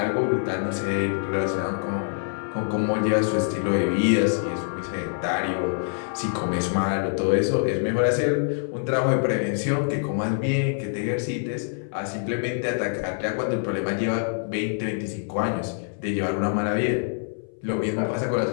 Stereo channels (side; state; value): right; silent; 60 dB below the other